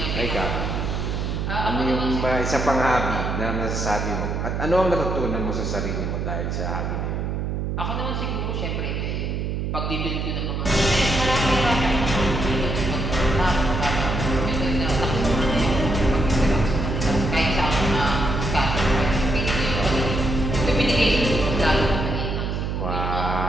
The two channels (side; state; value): right; noise; hum, 2 dB below the sound